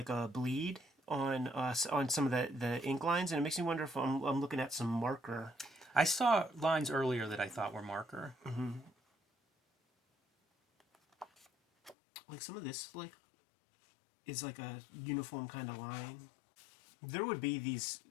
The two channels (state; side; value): drops out; right; at 12.0 s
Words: bleed on some of the ink lines, and it makes me wonder if I'm looking at some marker. I saw lines earlier that I thought were marker. Mm-hmm. Like some of this is like a uniform kind of line. There would be these